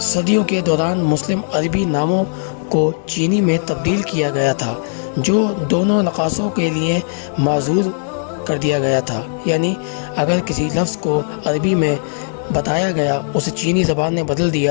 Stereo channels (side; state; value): right; silent; 67 dB below the other